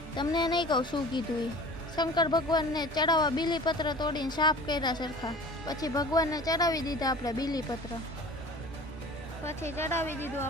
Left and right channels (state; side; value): normal; both; correlation 0.42